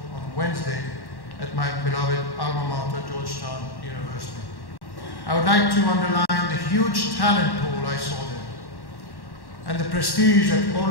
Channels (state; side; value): late; right; 1.1 ms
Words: on Wednesday at my beloved alma mater, Georgetown University. I would like to underline the huge talent pool I saw there, and the prestige that all